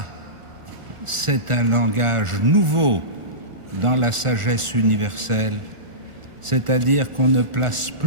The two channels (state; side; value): late; left; 1.4 ms